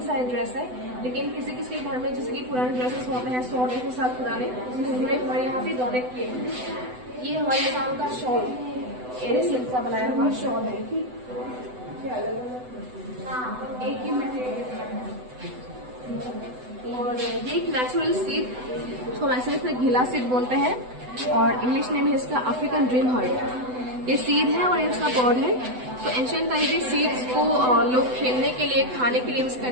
सारे ड्रेस है। लेकिन किसी किसी के घर में जैसे कि पुराने ड्रेसेस होते हैं 100-150 साल पुराने, उन्होंने हमारे यहाँ पे डोनेट किए हैं। ये हमारे आसाम का शॉल एरे सिल्क का बनाया हुआ शॉल है। एक ही और ये एक नेचुरल सीड, उसको वैसे इसमें घिला सीड बोलते हैं और इंग्लिश नेम है इसका अफ्रीकन ड्रीम हार्ट। ये सीड है और ये उसका पॉड है। तो एंशिएंट टाइम में सीड्स को लोग खेलने के लिए, खाने के लिए यूज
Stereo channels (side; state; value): left; late; 8.0 ms